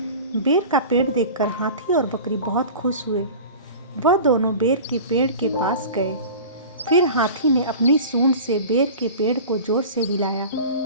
का पेड़ देखकर हाथी और बकरी बहुत खुश हुए। वह दोनों बेर के पेड़ के पास गए। फिर हाथी ने अपनी सूंड से बेर के पेड़ को जोर से हिलाया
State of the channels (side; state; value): both; inverted; correlation -0.37